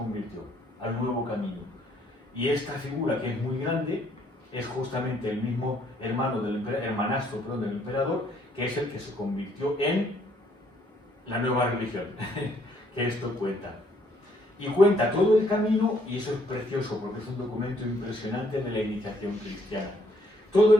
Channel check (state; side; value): normal; both; correlation 0.67